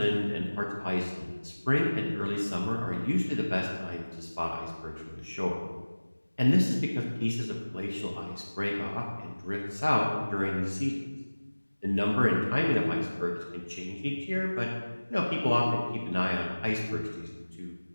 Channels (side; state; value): both; inverted; correlation -1.00